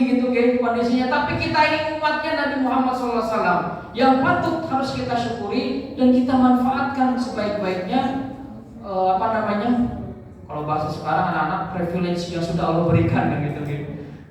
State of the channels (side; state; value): both; identical; correlation 1.00